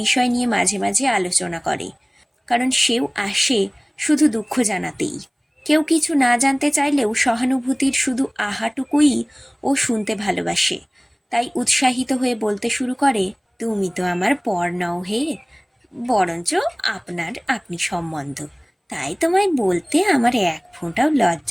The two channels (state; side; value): identical; both; correlation 1.00